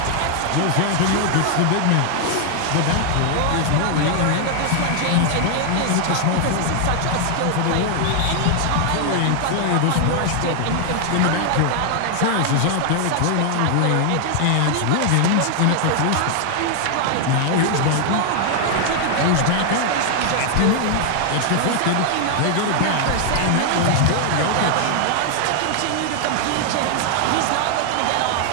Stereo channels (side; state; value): both; different; correlation 0.00